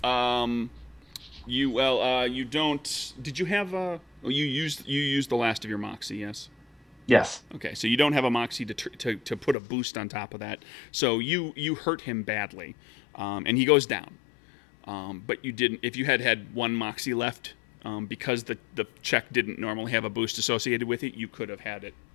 You don't. Did you have a? Oh, you used the last of your moxie, yes. Yes. Okay, so you don't have a moxie to put a boost on top of that. So you hurt him badly, and he goes down. But you didn't. If you had one moxie left, because the check didn't normally have a boost associated with it, you could have had it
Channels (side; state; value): right; drops out; at 9.6 s